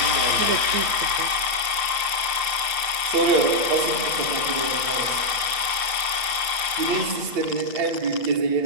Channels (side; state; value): left; late; 8.4 ms